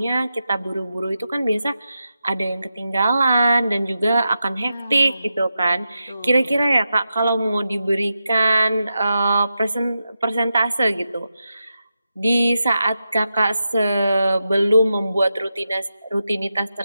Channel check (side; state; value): both; inverted; correlation -0.89